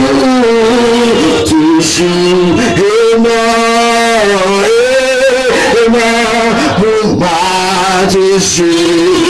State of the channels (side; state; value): both; identical; correlation 1.00